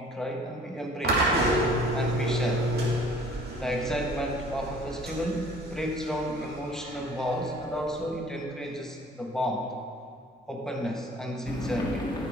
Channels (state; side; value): normal; both; correlation 0.51